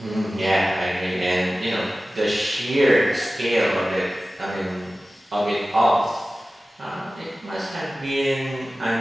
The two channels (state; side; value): normal; both; correlation 0.96